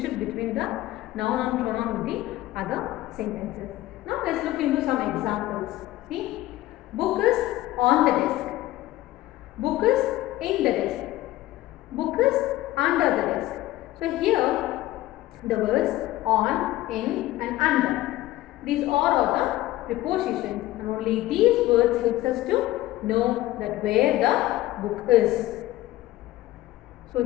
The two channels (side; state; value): right; quieter; 16.3 dB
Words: between the noun and pronoun with the other sentences. Now let's look into some examples. See, book is on the desk. Book is in the desk. Book is under the desk. So here the words on, in and under. These all are the prepositions and only these words helps us to know that where the book is. So